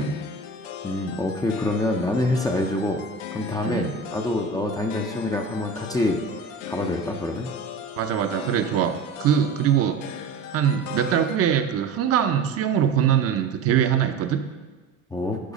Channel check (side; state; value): left; quieter; 4.0 dB